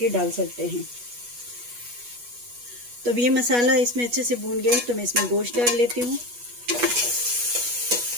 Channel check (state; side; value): late; left; 8.3 ms